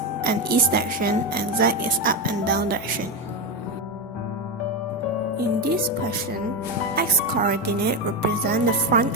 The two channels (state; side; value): normal; both; correlation 0.11